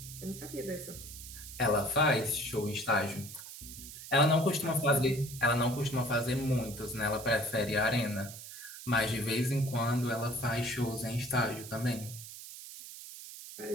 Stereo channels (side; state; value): right; noise; hiss, 13 dB below the sound